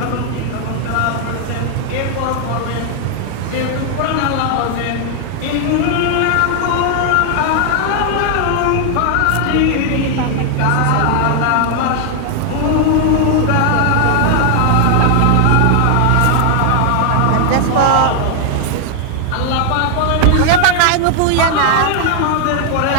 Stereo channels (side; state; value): both; different; correlation 0.00